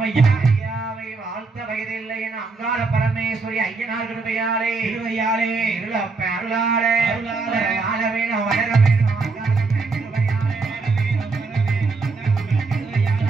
ஐயாவை வாழ்த்த வயதில்லை என அங்காள பரமேஸ்வரி ஐயனார் கிருபையாலே திருவையாளே, இருளப்ப அருளாலே அருளாலே, வாழ வேணும் வளர வேணும் அங்காளம்ம கிருபையாலே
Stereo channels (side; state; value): left; quieter; 4.0 dB